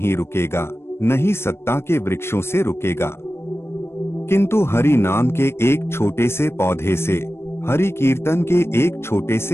रुकेगा, नहीं सत्ता के वृक्षों से रुकेगा, किंतु हरि नाम के एक छोटे से पौधे से, हरि कीर्तन के एक छोटे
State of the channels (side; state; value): right; late; 0.12 ms